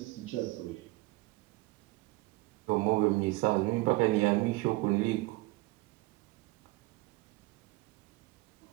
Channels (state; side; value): quieter; left; 21.7 dB